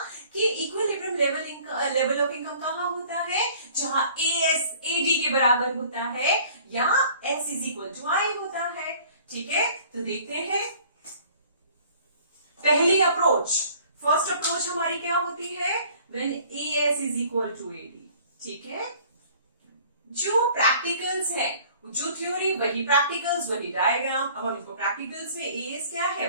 कि इक्विलिब्रियम लेवल ऑफ इनकम कहाँ होता है, जहां एस एडी के बराबर होता है या एस इज इक्वल टू आई होता है। ठीक है, तो देखते हैं पहली अप्रोच। फर्स्ट अप्रोच हमारी क्या होती है, when AS is equal to AD. ठीक है, जो प्रैक्टिकल्स है, जो थ्योरी वही प्रैक्टिकल्स वही डायग्राम। अब हम इसको प्रैक्टिकल्स में एएस क्या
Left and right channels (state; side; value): inverted; both; correlation -0.52